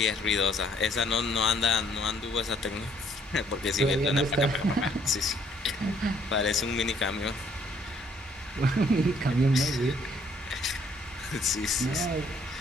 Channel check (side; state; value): both; normal; correlation 0.65